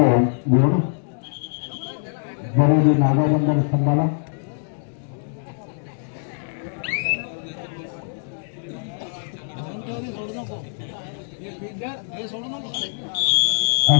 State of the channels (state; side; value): silent; right; digital silence